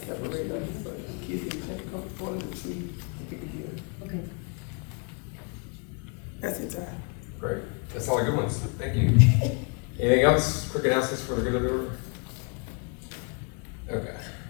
them. So the kids can come go to the tree and pick a gift. Okay. That's it, time. Great. That's all the good ones. Thank you. Anything else? Quick announcements for the good of the order? Okay.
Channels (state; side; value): quieter; right; 35.5 dB